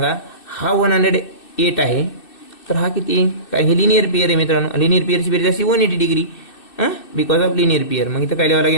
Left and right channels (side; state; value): right; late; 2.6 ms